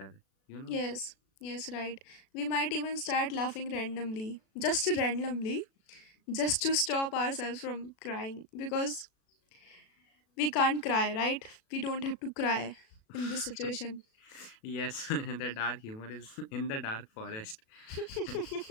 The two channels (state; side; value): late; right; 37 ms